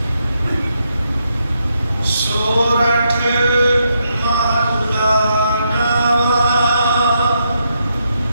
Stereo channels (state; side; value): inverted; both; correlation -0.80